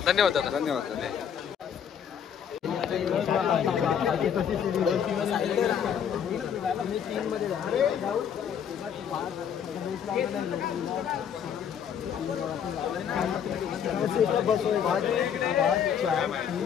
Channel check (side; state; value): right; quieter; 8.2 dB